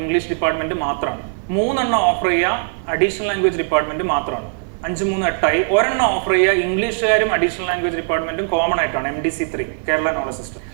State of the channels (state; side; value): silent; left; digital silence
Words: ഡിപ്പാർട്ട്മെന്റ് മാത്രമാണ്, 3 ഓഫർ ചെയ്യുക അഡീഷണൽ ലാംഗ്വേജ് ഡിപ്പാർട്ട്മെന്റ് മാത്രമാണ്. 5, 3, 8 ഒരെണ്ണം ഓഫർ ചെയ്യുക ഇംഗ്ലീഷുകാരും അഡീഷണൽ ലാംഗ്വേജ് ഡിപ്പാർട്ട്മെന്റും കോമൺ ആയിട്ടാണ്, MDC 3 കേരള നോളജ് സിസ്റ്റം.